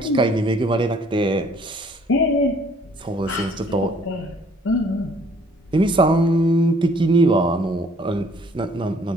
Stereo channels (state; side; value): normal; both; correlation 0.60